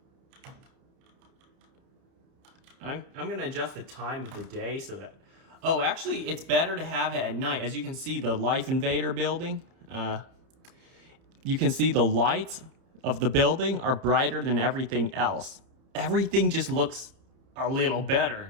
I'm gonna adjust the time of the day so that, oh, actually it's better to have it at night. As you can see, the Life Invader building, you can see the lights of the building are brighter than everything else. Everything just looks a little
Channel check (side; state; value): left; late; 30 ms